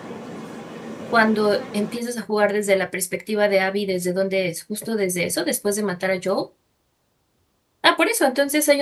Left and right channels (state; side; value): identical; both; correlation 1.00